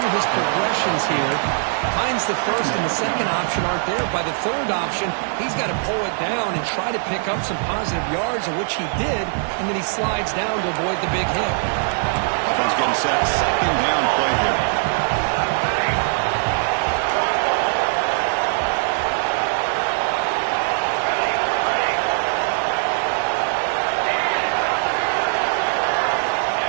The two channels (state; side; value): silent; left; 65 dB below the other